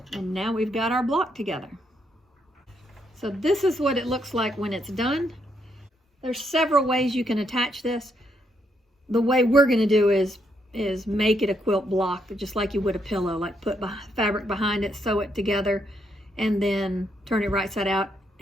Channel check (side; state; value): both; normal; correlation 0.76